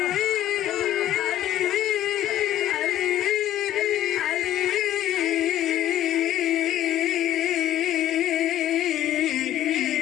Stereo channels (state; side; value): quieter; right; 12.7 dB